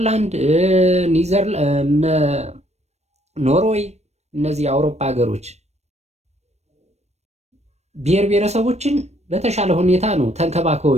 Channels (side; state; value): left; late; 0.32 ms